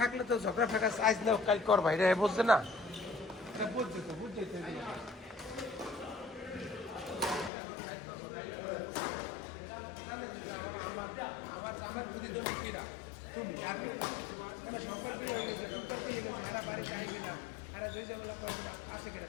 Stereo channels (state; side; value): drops out; right; at 7.5 s